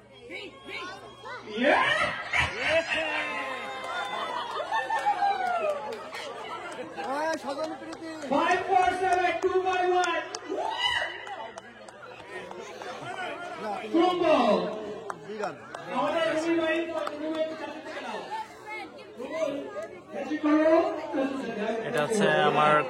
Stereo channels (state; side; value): identical; both; correlation 1.00